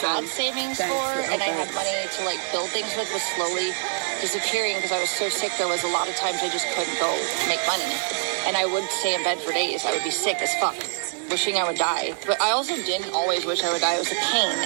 XM. savings Thanks. for, and I had Okay. money to, like, build things with was slowly disappearing because I was so sick. There was a lot of times I just couldn't go make money, and I would stay in bed for days. I would be sick as fuck, wishing I would die. But I also didn't always wish I would die. It was the pain.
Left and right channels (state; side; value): silent; left; digital silence